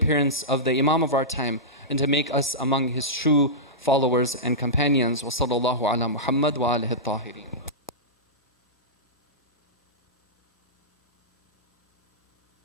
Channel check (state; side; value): normal; both; correlation -0.14